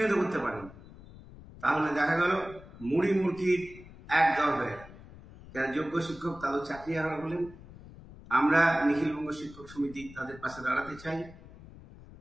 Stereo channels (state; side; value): noise; left; rumble, 18 dB below the sound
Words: করতে পারেনি। তাহলে দেখা গেল মুড়ি মুরগির এক দল হয়ে যারা যোগ্য শিক্ষক তাদের চাকরি হারা হলেন। আমরা নিখিলবঙ্গ শিক্ষক সমিতি তাদের পাশে দাঁড়াতে চাই